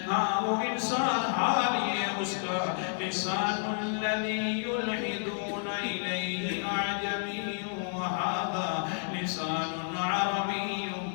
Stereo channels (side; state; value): right; silent; digital silence